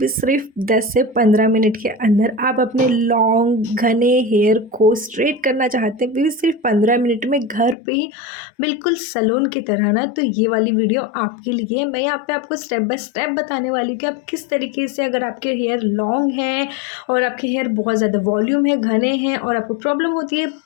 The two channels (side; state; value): right; drops out; at 7.8 s